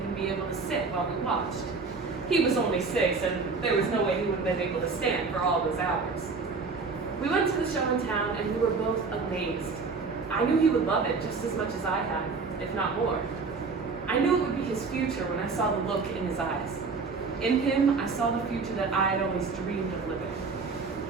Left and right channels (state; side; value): quieter; left; 4.5 dB